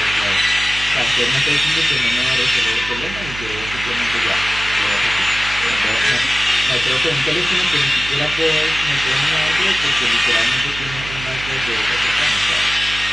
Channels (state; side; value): noise; right; hum, 12 dB below the sound